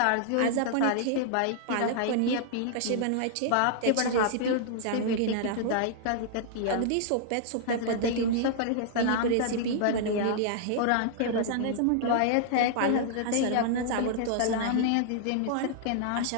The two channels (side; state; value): both; different; correlation -0.01